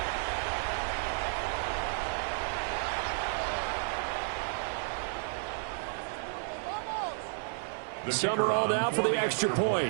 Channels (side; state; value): left; silent; 56 dB below the other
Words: Summerall now for the extra